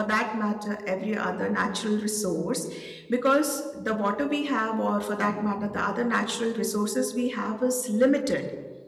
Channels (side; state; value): both; identical; correlation 1.00